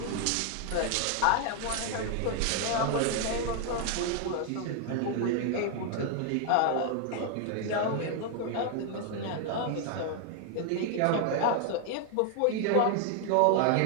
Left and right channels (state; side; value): different; both; correlation 0.00